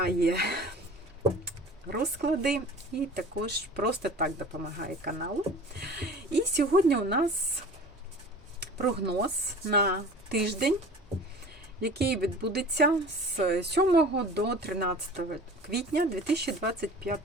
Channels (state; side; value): normal; both; correlation 0.41